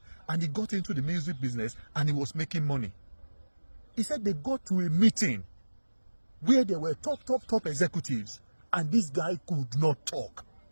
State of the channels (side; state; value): both; inverted; correlation -1.00